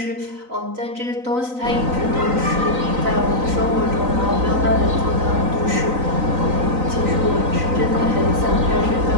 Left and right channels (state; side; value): late; left; 3.9 ms